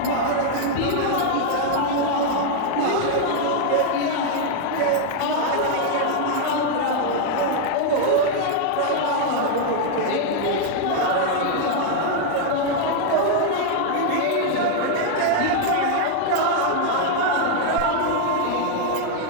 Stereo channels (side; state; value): both; different; correlation 0.00